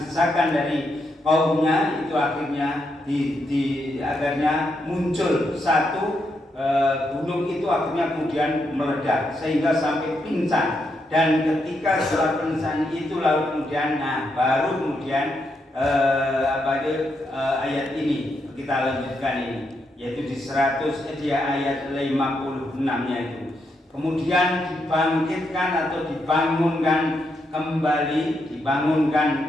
dari kaumnya, itu akhirnya akhirnya muncul satu gunung itu akhirnya kemudian meledak sehingga sampai pingsan. Dan ketika setelah pingsan itu lalu kemudian baru kemudian ayat ini kita lanjutkan ini, yaitu di ayat 56-nya itu. Kemudian dibangkitkan atau dibangunkan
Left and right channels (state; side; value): normal; both; correlation 0.81